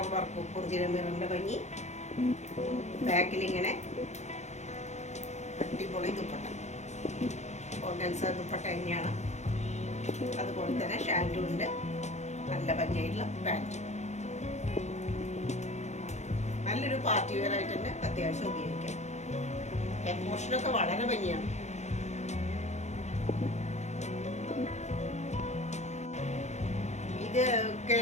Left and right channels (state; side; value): late; right; 0.33 ms